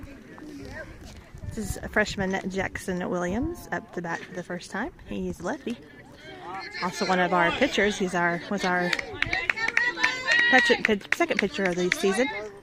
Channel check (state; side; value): identical; both; correlation 1.00